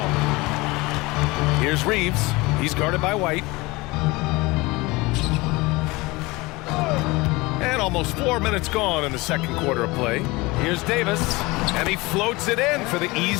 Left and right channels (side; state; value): right; quieter; 22.7 dB